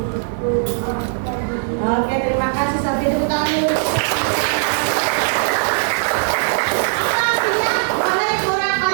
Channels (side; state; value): left; silent; digital silence